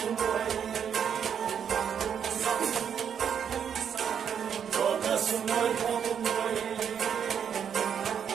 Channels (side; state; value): left; quieter; 8.0 dB